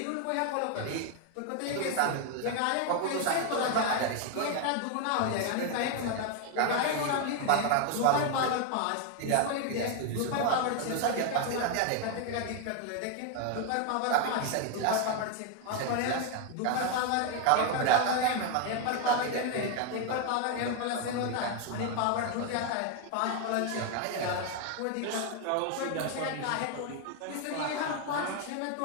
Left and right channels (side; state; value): both; different; correlation 0.01